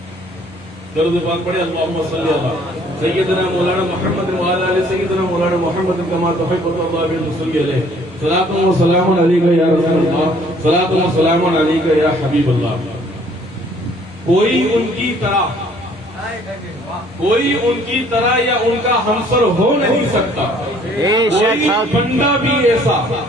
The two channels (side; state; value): both; normal; correlation 0.59